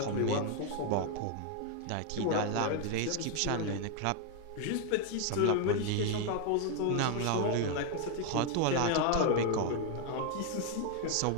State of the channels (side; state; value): both; different; correlation 0.00